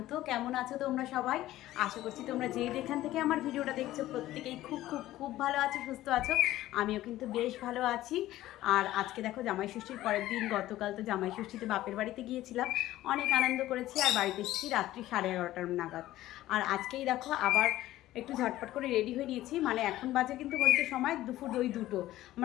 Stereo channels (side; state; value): right; quieter; 15.0 dB